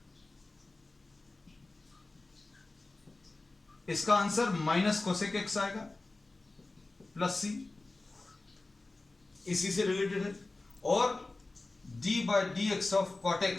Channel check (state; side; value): quieter; right; 3.2 dB